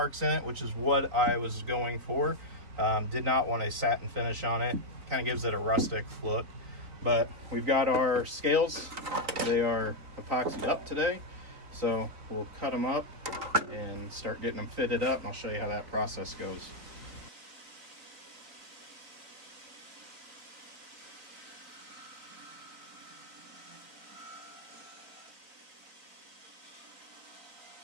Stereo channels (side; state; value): left; late; 3.9 ms